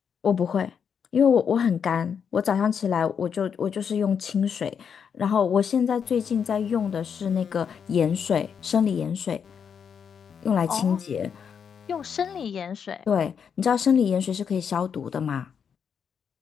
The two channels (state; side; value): quieter; right; 7.1 dB